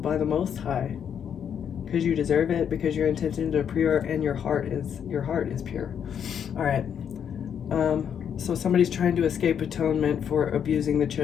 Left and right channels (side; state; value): right; quieter; 8.2 dB